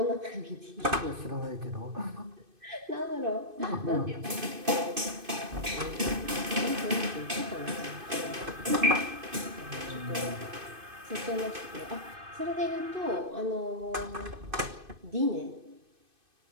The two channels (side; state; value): left; late; 2.5 ms